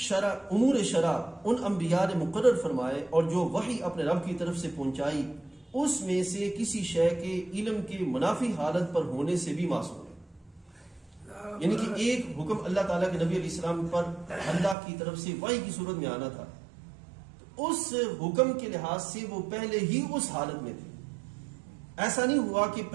ان انبیاء نے مقرر فرمائے اور جو وحی اپنے رب کی طرف سے پہنچائی، اس میں سے کسی شے کے علم کے منافی حالت پر ہونے سے بھی معصوم ہے۔ یعنی کہ ایک حکم اللہ تعالیٰ کے نبی علیہ السلام پر اللہ کی طرف سے وحی کی صورت میں آنا تھا، تو اس حکم کے لحاظ سے وہ پہلے ہی اس حالت میں تھے۔ ایسا نہیں ہوا کہ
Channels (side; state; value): left; drops out; at 14.8 s